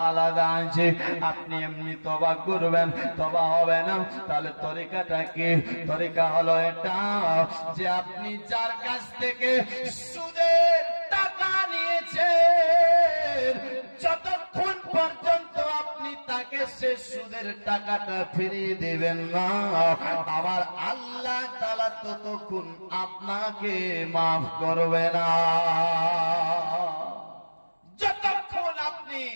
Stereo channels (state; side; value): inverted; both; correlation -1.00